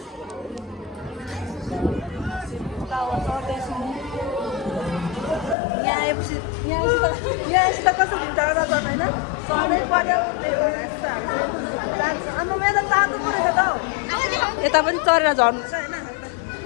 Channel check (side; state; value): right; drops out; at 5.6 s